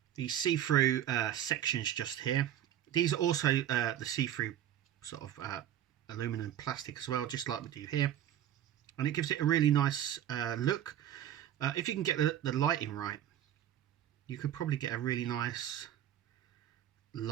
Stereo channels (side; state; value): left; quieter; 11.1 dB